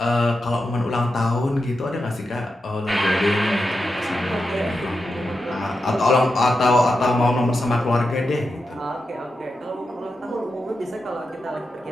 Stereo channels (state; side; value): normal; both; correlation 0.88